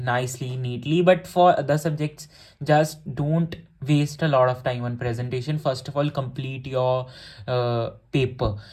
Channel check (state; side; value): identical; both; correlation 1.00